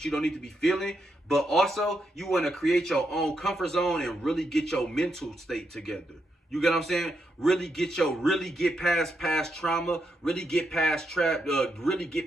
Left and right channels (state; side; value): normal; both; correlation 0.82